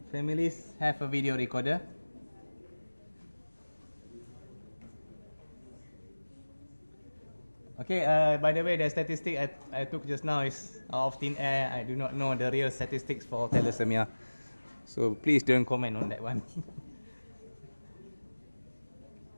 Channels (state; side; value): inverted; both; correlation -1.00